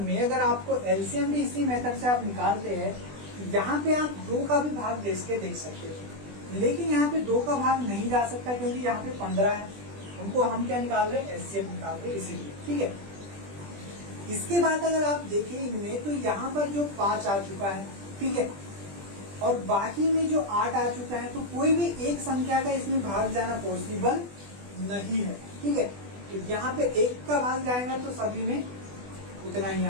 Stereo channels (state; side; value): late; left; 20 ms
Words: में। अगर आपको एलसीएम भी इसी मेथड से आप निकालते हैं, यहाँ पे आप 2 का भी भाग दे देख सकते हैं, लेकिन यहाँ पे 2 का भाग नहीं जा सकता क्योंकि यहाँ पे 15 है। हम क्या निकाल रहे हैं, एचसीएफ निकाल रहे हैं, इसीलिए। ठीक है। इसके बाद अगर आप देखें इनमें, तो यहाँ पर जो 5 आ चुका है, ठीक है, और बाकी में जो 8 आ चुका है, तो कोई भी एक संख्या का इसमें भाग जाना पॉसिबल नहीं है। ठीक है। तो यहाँ पे 1 का भाग जाएगा तो सभी में उतना ही